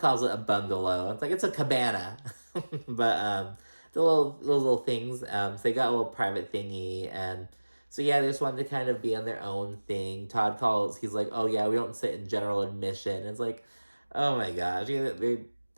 it a bungalow. It's like, it's a cabana. But the little things. So they got a little private thingy. And so yeah, they just wanted to kind of be on their own thing. Todd calls, he's like, oh yeah, we don't sit in general admission. It's like, oh my gosh.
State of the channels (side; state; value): both; inverted; correlation -1.00